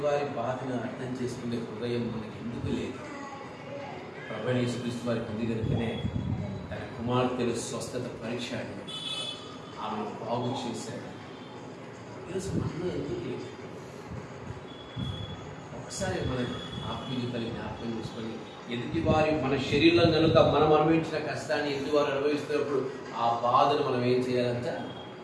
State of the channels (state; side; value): identical; both; correlation 1.00